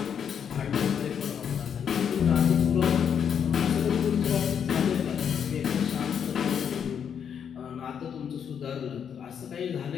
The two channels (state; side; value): quieter; right; 7.9 dB